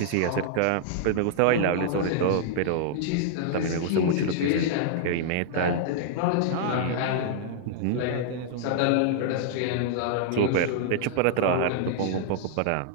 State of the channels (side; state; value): both; different; correlation -0.01